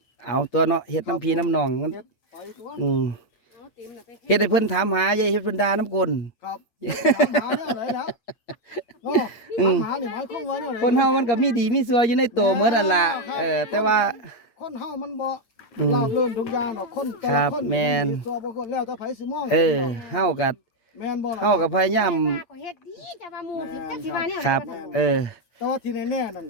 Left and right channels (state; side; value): late; right; 8.6 ms